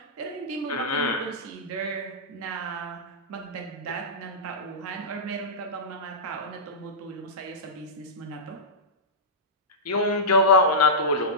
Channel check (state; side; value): normal; both; correlation -0.15